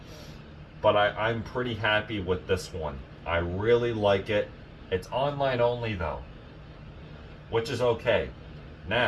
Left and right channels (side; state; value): both; identical; correlation 1.00